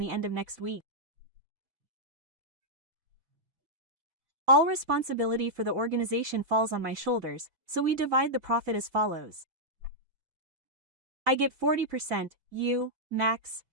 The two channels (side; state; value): left; late; 4.0 ms